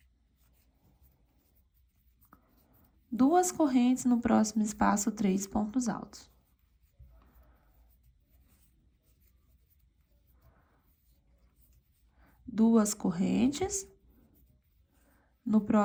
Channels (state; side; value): identical; both; correlation 1.00